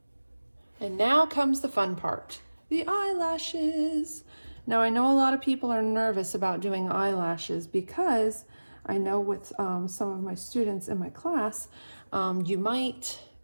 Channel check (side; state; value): both; inverted; correlation -1.00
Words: And now comes the fun part, the eyelashes. Now I know a lot of people are nervous about doing eyelashes because I know with some of my students in my class, you might